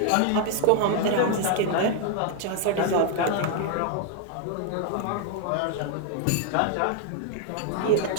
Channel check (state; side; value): different; both; correlation 0.00